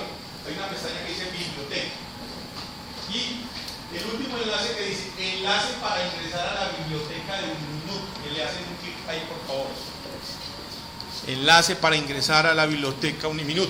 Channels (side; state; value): both; identical; correlation 1.00